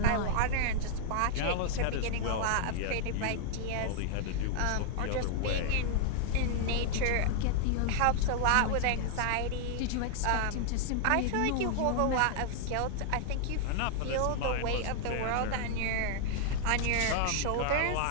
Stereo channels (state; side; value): different; both; correlation -0.01